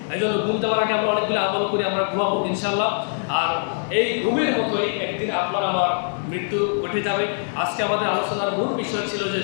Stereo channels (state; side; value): silent; right; digital silence